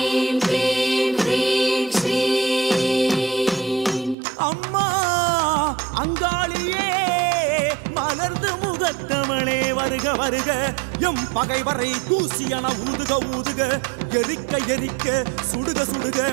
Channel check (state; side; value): drops out; left; at 4.2 s